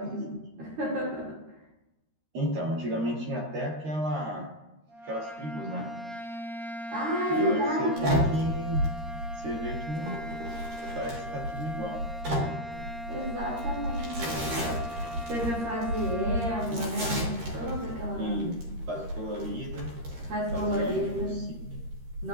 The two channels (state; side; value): late; left; 13 ms